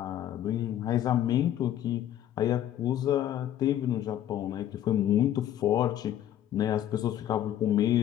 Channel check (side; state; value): right; quieter; 11.6 dB